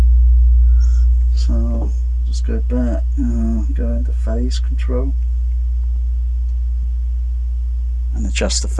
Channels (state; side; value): identical; both; correlation 1.00